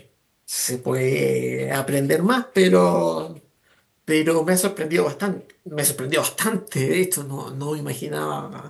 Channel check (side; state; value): both; identical; correlation 1.00